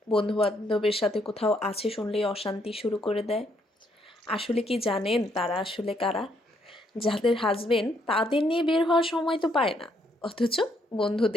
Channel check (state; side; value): normal; both; correlation 0.72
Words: বন্ধু বান্ধবের সাথে কোথাও আছে শুনলেই অশান্তি শুরু করে দেয়। আসলে কি জানেন তারা আসলে কারা? যাদের হাজবেন্ড তাদের নিয়ে বের হওয়ার সময় তো পায় না, অথচ